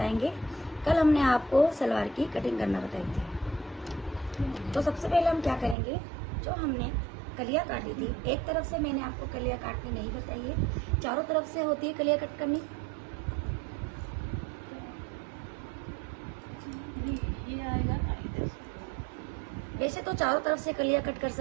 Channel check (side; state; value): left; drops out; at 5.8 s